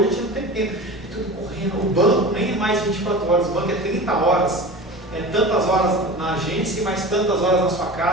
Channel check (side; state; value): both; normal; correlation 0.33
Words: a gente não tem tempo. É tudo correndo. O banco nem é mais 24 horas, o banco é 30 horas. É tantas horas na agência e mais tantas horas na sua